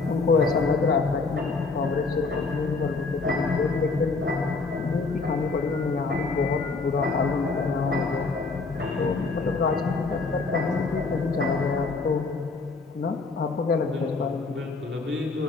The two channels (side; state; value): right; quieter; 4.0 dB